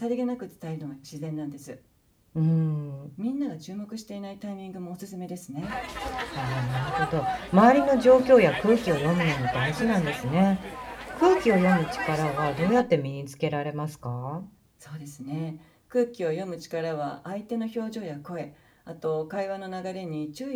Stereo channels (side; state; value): both; identical; correlation 1.00